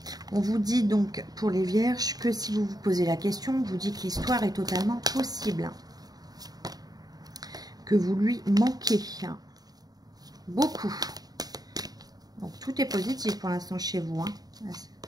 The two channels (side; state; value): left; late; 0.19 ms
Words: On vous dit donc pour les vierges que si vous vous posez la question, on vous dit que l'histoire est totalement possible. Que vous lui manquez. Beaucoup. Donc tout est positif pour l'instant chez vous. Hein.